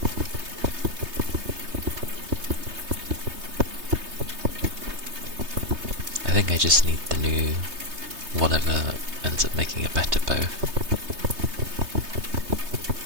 I think I just need the new whatever ends up making a better bow.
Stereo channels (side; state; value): left; late; 3.2 ms